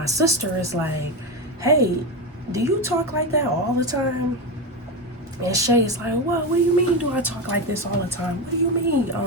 sister is like, hey, do you talk like that all the time? And Shay is like, well, what do you mean do I talk like this all the time? What do you mean?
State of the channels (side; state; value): both; normal; correlation 0.15